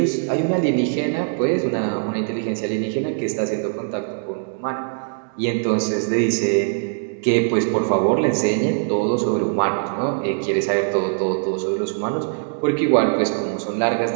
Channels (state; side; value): silent; left; digital silence